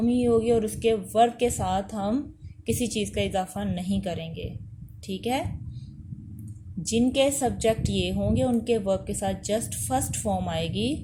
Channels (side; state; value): both; identical; correlation 1.00